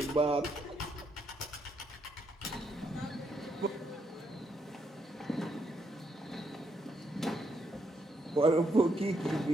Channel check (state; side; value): normal; both; correlation 0.76